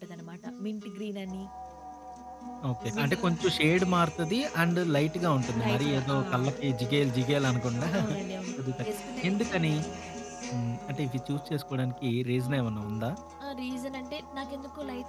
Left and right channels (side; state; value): both; identical; correlation 1.00